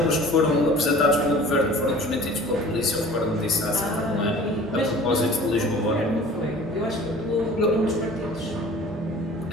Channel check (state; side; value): normal; both; correlation 0.45